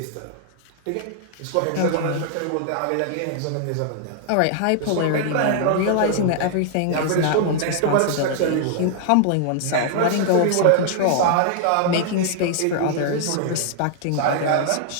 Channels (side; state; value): both; different; correlation -0.01